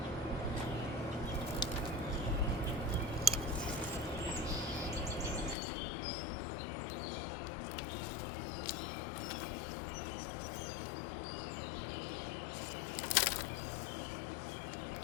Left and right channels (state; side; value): drops out; right; at 5.6 s